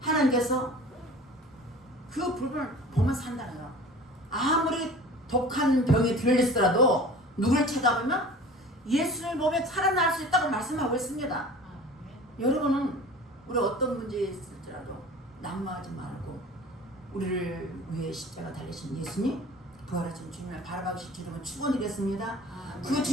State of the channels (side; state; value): both; normal; correlation 0.42